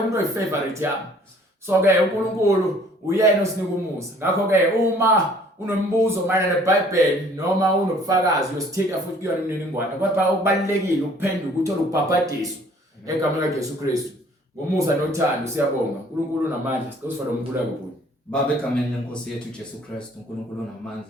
oyifavorite yami. So ke uNkulunkulu uyena osinika umusa. Ngakho ke uma unombuzo mayelana neBhayibheli noma unobufakazi uyosithinta futhi kuyona imininingwane. Kodwa okubalekile ukuphenduka uthole ukubhabhadiswa egameni likaJesu Kristu. Ngomusa nothando siyabonga. uNkulunkulu unamandla, sicela umkhuleko kuye. Baba, egameni lenkosi yethu uJesu Kristu, uNkulunkulu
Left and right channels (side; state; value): both; normal; correlation 0.56